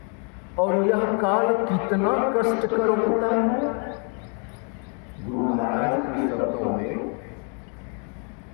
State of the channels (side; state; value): right; quieter; 39.2 dB